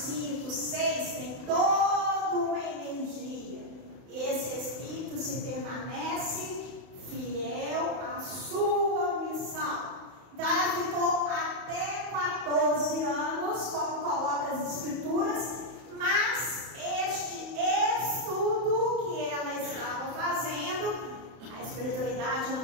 6 tem toda uma energia. E esse espírito se permanece fiel à sua missão. Então ela ficou até 14 anos, como coloca as escrituras, mas este estudo que ela estava fazendo, a espiritualidade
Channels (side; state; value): left; late; 31 ms